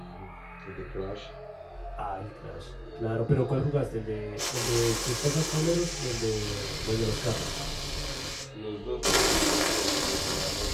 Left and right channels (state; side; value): identical; both; correlation 1.00